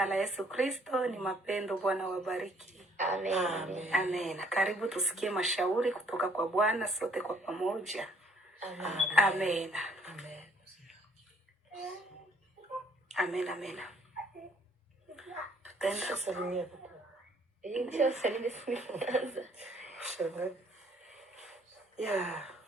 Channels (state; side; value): normal; both; correlation 0.61